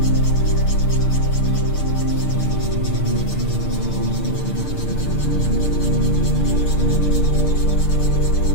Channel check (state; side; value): late; right; 6.7 ms